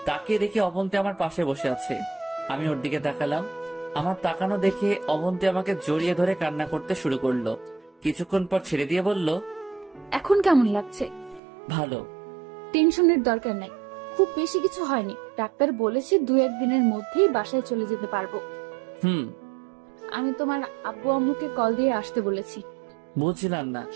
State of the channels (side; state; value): left; drops out; at 11.4 s